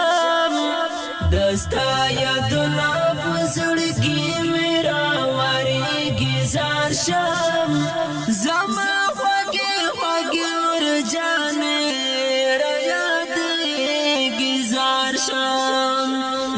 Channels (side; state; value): both; identical; correlation 1.00